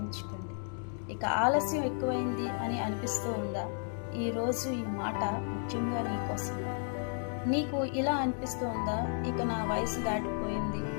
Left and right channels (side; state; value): right; silent; 56 dB below the other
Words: ఇక ఆలస్యం ఎక్కువైంది అని అనిపిస్తూ ఉందా? ఈరోజు ఈ మాట ముఖ్యంగా నీకోసం. నీకు ఇలా అనిపిస్తూ ఉందా, ఇక నా వయసు దాటిపోయింది,